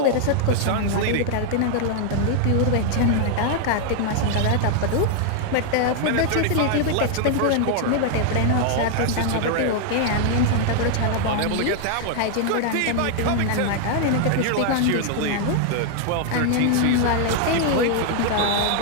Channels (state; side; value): different; both; correlation 0.00